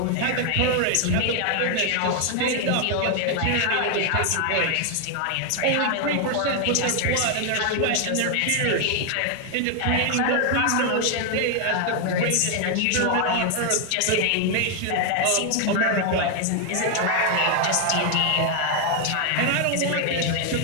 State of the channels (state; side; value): different; both; correlation 0.00